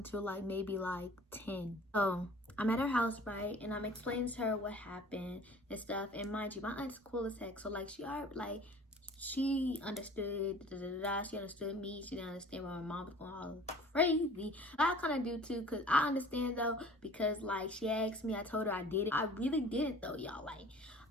like maybe like 10. So I'm at her house, right? And I'm explaining to her what happened and stuff. And mind you, my aunt's cool as heck. So like she understood, she understood me. She didn't understand why my mom was going all crazy. I kind of do too, because I understand though, because like she asked me, I told her I did it. I really did it though, y'all. Like,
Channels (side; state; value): both; normal; correlation 0.47